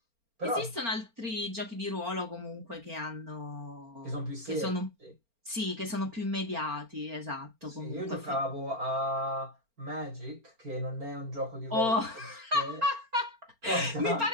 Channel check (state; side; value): late; left; 4.4 ms